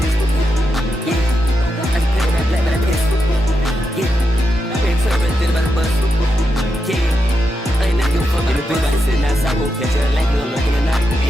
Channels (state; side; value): normal; both; correlation 0.86